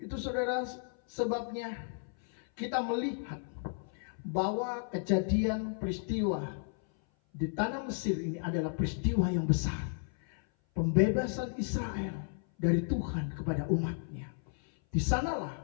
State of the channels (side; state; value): right; silent; 55 dB below the other